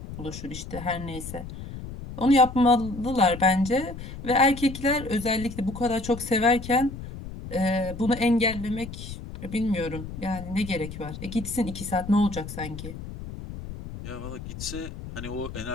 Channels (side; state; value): left; noise; rumble, 10 dB below the sound